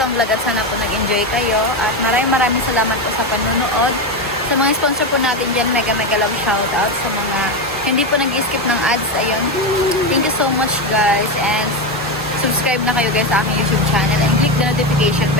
vlog at sana po nag-enjoy kayo. At maraming salamat po sa panunood. Sa mga sponsor po natin dyan, mega love shoutout. Sa mga hindi po nag-skip ng ads, ayun. Thank you so much guys. And subscribe na kayo guys sa aking YouTube channel. And click the notification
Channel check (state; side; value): normal; both; correlation 0.13